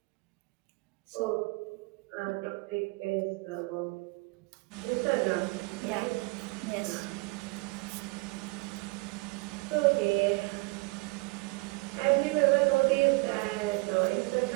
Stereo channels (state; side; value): quieter; left; 26.1 dB